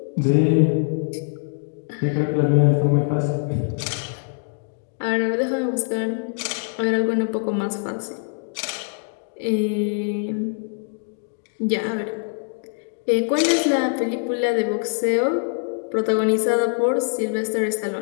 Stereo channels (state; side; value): silent; right; 63 dB below the other